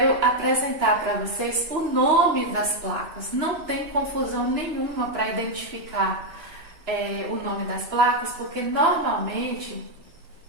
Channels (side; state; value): left; late; 2.9 ms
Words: apresentar para vocês o nome das placas. Não tem confusão nenhuma para identificar o nome das placas, porque normalmente